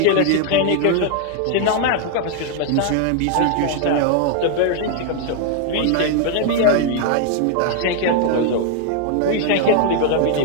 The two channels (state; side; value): different; both; correlation 0.00